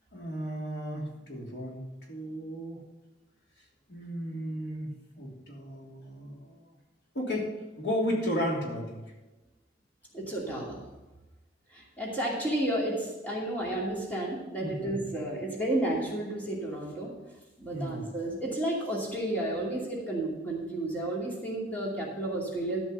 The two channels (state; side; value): normal; both; correlation 0.46